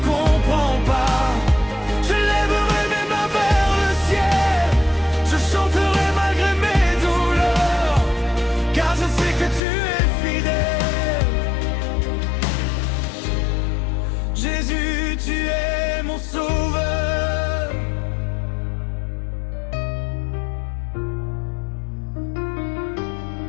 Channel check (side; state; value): right; drops out; at 9.6 s